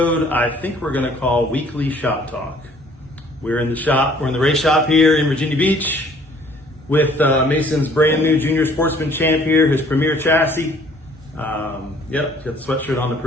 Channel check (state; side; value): normal; both; correlation 0.57